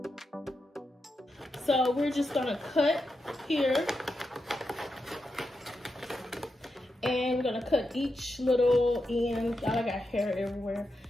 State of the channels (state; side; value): normal; both; correlation 0.87